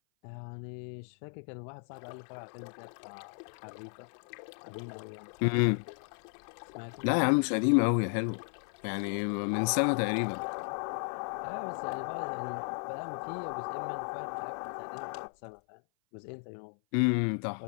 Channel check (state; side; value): silent; right; 55 dB below the other